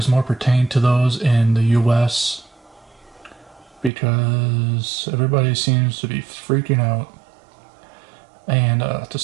more pertained to those in the US because everybody seems to be freaking out. And to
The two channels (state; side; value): drops out; left; at 3.9 s